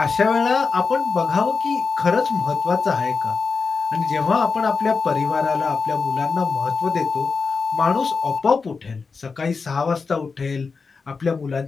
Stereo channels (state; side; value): quieter; right; 4.8 dB